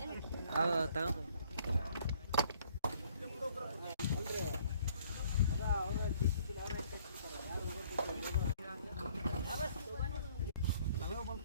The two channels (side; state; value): both; inverted; correlation -0.60